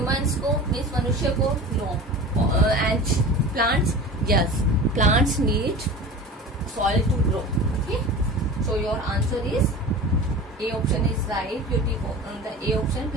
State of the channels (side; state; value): both; normal; correlation 0.35